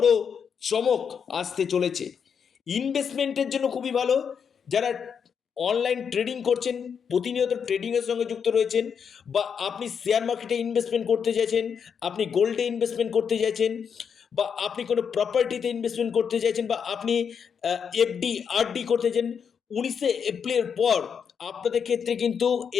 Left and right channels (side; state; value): right; quieter; 6.9 dB